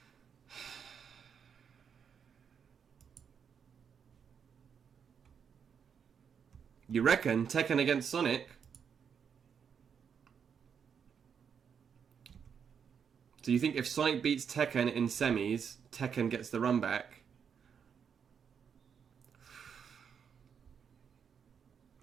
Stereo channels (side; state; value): left; quieter; 7.2 dB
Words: You reckon Tekken against Sonic? So you think if Sonic beats Tekken in semis, Tekken gets the run back?